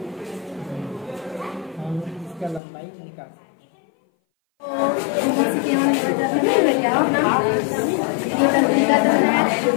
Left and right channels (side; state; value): right; drops out; at 2.6 s